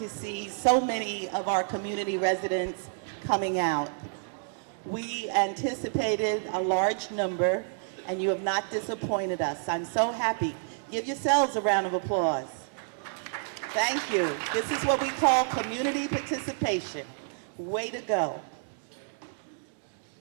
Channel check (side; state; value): left; silent; digital silence